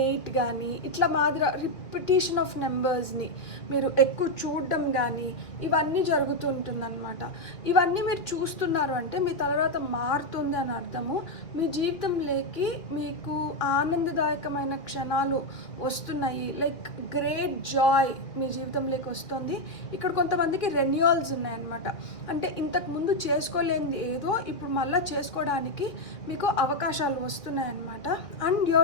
కానీ, ఇట్లా మాదిరి రిపిటేషన్ ఆఫ్ నెంబర్స్ని మీరు ఎక్కువ చూడడం కానీ ఇవన్నీ జరుగుతుంటుందన్నమాట. ఇవన్నీ మీరు చూస్తున్నారు అంటే మీ తలరాత మారుతుంది అని అర్థము. మీ జీవితంలోకి మీకు ఆనందదాయకమైన క్షణాలు వస్తున్నాయి, లైక్ గ్రేట్ జాయ్ మీ జీవితంలోకి వస్తుంది. ఇక్కడ కొంతమందికి రెన్యూవల్స్ ఉన్నాయన్నమాట, అంటే ఇంతకుముందు చేసుకోలేనిది ఏదో ఇప్పుడు మళ్ళీ చేసుకోవడానికి మీకు అవకాశాలు వస్తున్నాయన్నమాట. And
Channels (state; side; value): late; right; 2.6 ms